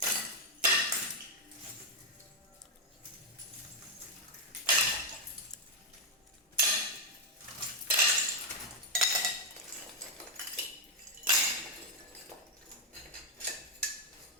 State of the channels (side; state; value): both; normal; correlation 0.01